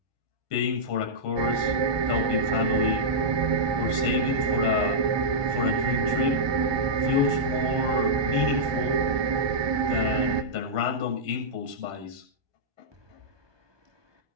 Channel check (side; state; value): left; late; 1.2 ms